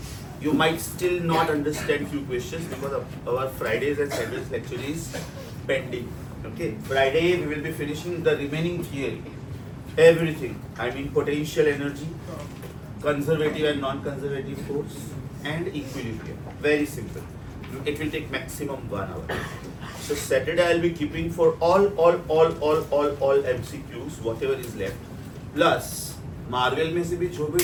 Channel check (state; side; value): identical; both; correlation 1.00